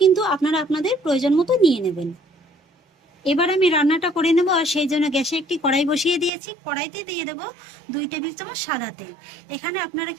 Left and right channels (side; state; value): left; drops out; at 6.3 s